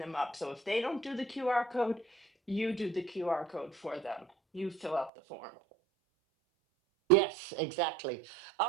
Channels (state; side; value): drops out; left; at 5.1 s